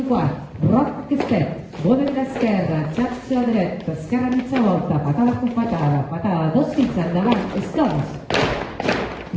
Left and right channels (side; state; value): both; identical; correlation 1.00